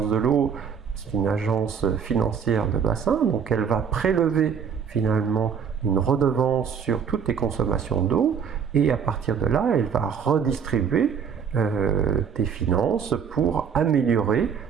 de l'eau, c'est une agence financière de bassin, donc elle va prélever finalement une redevance sur toutes les consommations d'eau et à partir de là, elle va redistribuer des finances pour améliorer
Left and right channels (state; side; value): quieter; left; 6.9 dB